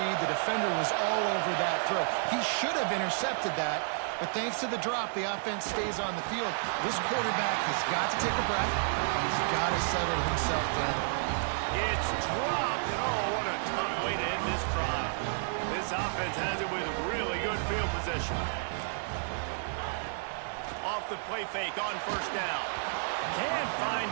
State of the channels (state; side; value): silent; left; digital silence